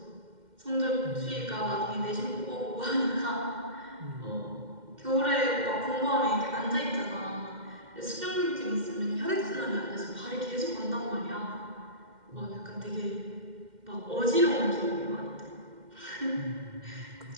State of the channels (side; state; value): left; late; 2.1 ms